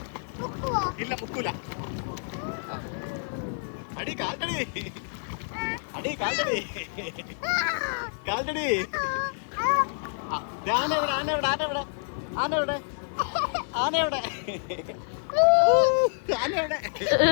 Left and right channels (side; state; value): right; silent; 59 dB below the other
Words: ഇല്ല മുക്കൂല. അടി കാൽട്ടടി, അടി കാൽട്ടടി, കാൽട്ടടി. ആനവിടെ, ആനവിടെ, ആനവിടെ, ആനവിടെ, ആനവിടെ, ആനവിടെ.